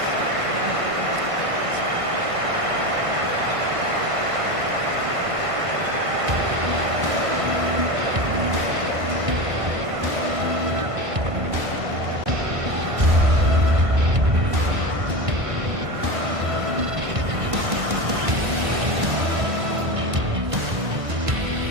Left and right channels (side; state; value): left; late; 1.5 ms